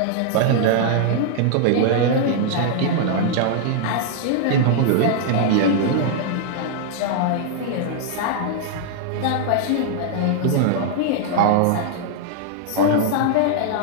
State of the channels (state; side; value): different; both; correlation -0.01